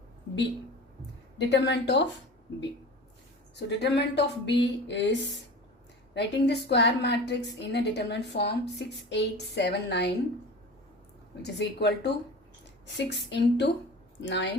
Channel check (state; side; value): normal; both; correlation 0.35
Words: B, determinant of B. So determinant of B is Writing the square matrix in a determinant form 6, 8, 7, 9, which is equal to 6 into